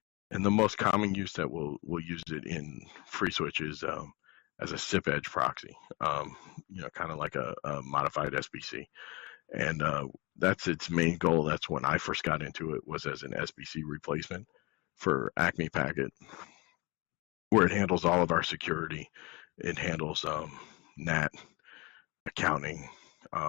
And the most common use that we'll use it in FreeSWITCH is as a SIP Edge Proxy, kind of like a modified SBC. And that's its main goal. That's when I first got into it, was as an SBC replacement for Acme Packet, where it handles all of our security. It handles NAT, accounting,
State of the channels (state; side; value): quieter; right; 25.6 dB